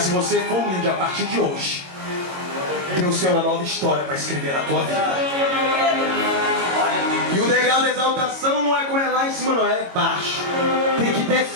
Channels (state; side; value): late; left; 22 ms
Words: se você for humilde a partir de hoje, Deus tem uma nova história para escrever na tua vida. E o degrau da exaltação não é como é lá em cima, não é baixo. Tem que